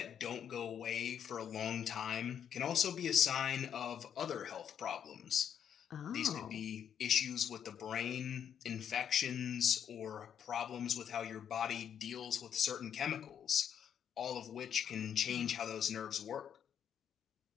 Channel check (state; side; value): quieter; right; 8.7 dB